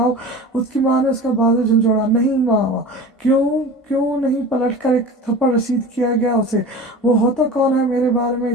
اس کی ماں نے اس کا بازو جھنجھوڑا۔ نہیں ماما، क्यों नहीं पलट कर एक थप्पड़ रसीद किया गया उसे। वो होता कौन है मेरे बारे में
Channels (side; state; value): both; normal; correlation 0.35